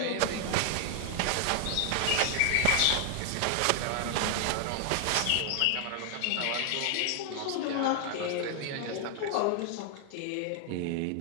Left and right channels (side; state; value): both; different; correlation 0.00